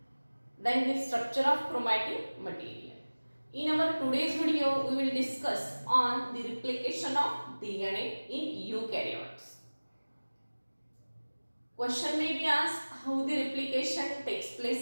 then the structure of chromatin material. In our today's video we will discuss on the replication of DNA in eukaryotes. Question may be asked how the replication takes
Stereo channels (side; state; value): both; inverted; correlation -1.00